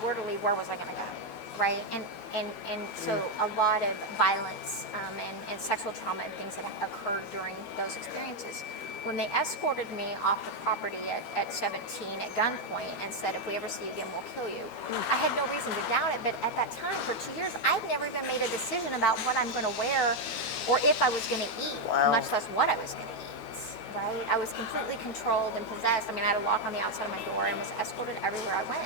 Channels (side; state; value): right; late; 12 ms